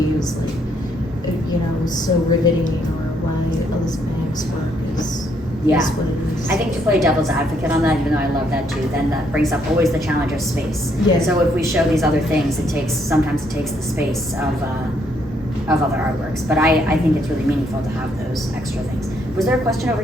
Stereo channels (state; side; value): normal; both; correlation 0.71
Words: is like, so riveting, or why Elizabeth Banks' work is what it is." I think to play devil's advocate on that, even though I love that too, then that brings up always the challenge of space. Yeah. So if we show these other things, sometimes it takes the space of other artworks. But I think it's really meaningful to have those extra things. Was there a question over